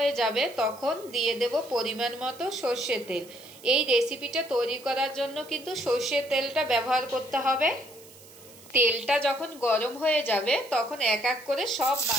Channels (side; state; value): right; noise; hiss, 21 dB below the sound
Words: যাবে তখন দিয়ে দেব পরিমাণ মতো সর্ষের তেল। এই রেসিপিটা তৈরি করার জন্য কিন্তু সর্ষের তেলটা ব্যবহার করতে হবে। তেলটা যখন গরম হয়ে যাবে তখন এক এক করে সব